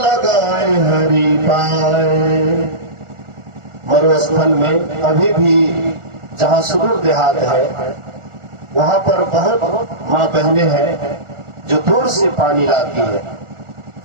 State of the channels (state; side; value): late; left; 1.4 ms